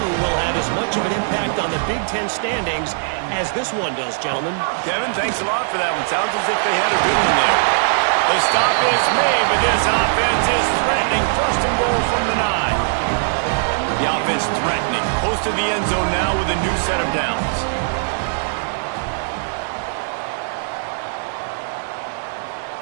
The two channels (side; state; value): left; silent; digital silence